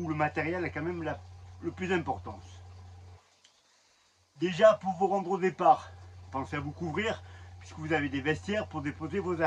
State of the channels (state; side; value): identical; both; correlation 1.00